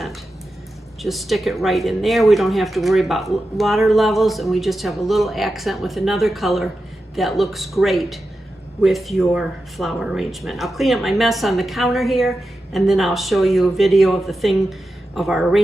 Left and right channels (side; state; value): both; normal; correlation 0.91